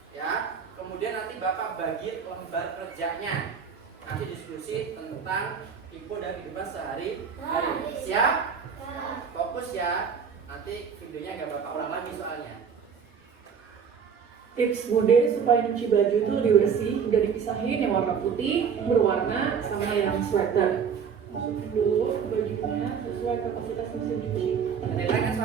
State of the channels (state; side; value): quieter; left; 6.7 dB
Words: Ya. Kemudian nanti Bapak bagi lembar kerjanya. Nanti diskusi tentang info dari kehidupan sehari-hari. Siap? Fokus ya. Nanti videonya nggak Bapak ulang lagi soalnya. Tips Bude supaya nyuci baju itu lebih bersih, udah dipisahin yang warna putih, berwarna, sama yang sweater. Masukin dulu bajunya sesuai kapasitas mesin cuci.